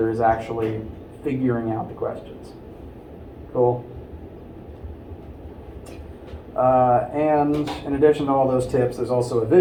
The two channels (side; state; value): both; identical; correlation 1.00